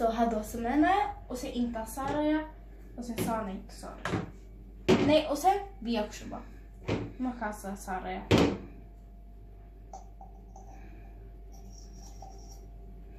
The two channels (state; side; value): identical; both; correlation 1.00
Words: هذا سمينا وسي إنت صاريا وسي صاني تصار ني وسي بيكشبا ما كان صاريا.